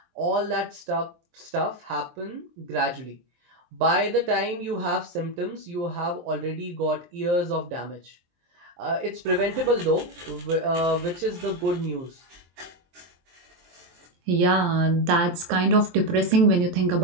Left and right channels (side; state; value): left; late; 23 ms